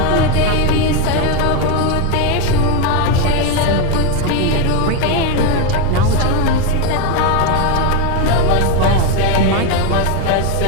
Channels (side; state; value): both; different; correlation 0.02